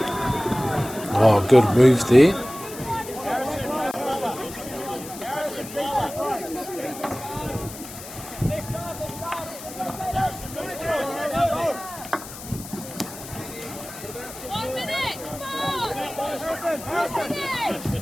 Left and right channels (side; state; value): left; noise; hiss, 13 dB below the sound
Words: Oh, good move there.